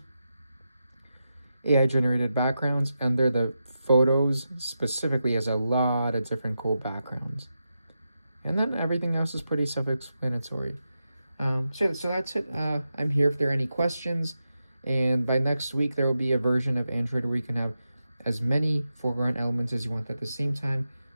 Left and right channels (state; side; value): inverted; both; correlation -0.89